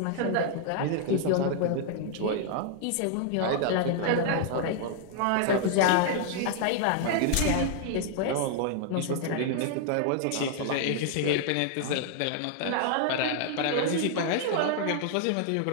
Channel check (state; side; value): different; both; correlation 0.00